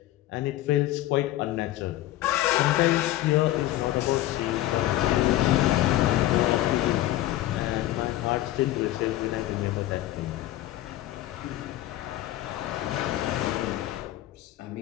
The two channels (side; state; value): right; quieter; 15.1 dB